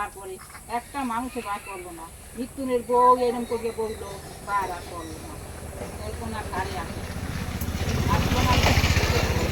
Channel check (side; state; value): both; identical; correlation 1.00